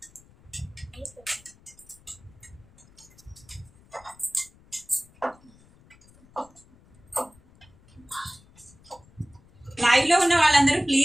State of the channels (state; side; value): noise; left; rumble, 27 dB below the sound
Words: లైవ్ లో ఉన్న వాళ్ళందరూ